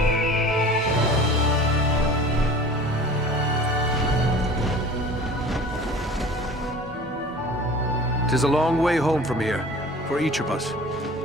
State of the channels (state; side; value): normal; both; correlation 0.42